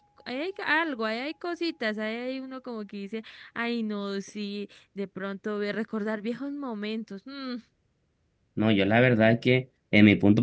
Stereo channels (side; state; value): both; identical; correlation 1.00